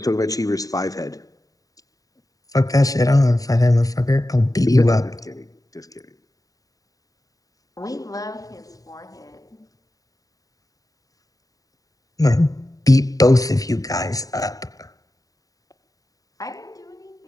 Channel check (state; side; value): late; right; 0.17 ms